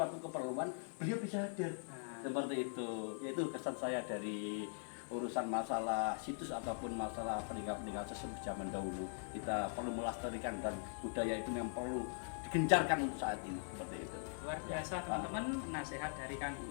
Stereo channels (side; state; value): right; silent; digital silence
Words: keperluan, beliau bisa hadir. Seperti itu. Yaitu kesan saya dari urusan masalah situs ataupun masalah peninggalan sesepuh zaman dahulu. Kita perlu melestarikan dan budaya itu memang perlu digencarkan untuk saat ini. Seperti itu. Luar biasa teman-teman, nasihat dari Kang